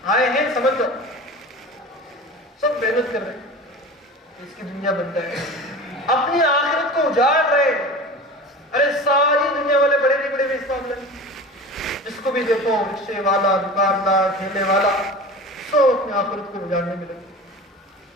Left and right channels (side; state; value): both; normal; correlation 0.35